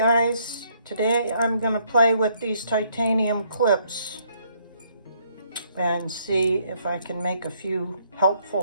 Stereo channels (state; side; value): inverted; both; correlation -0.69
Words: today I'm going to play with these titanium clips and see if I can make a few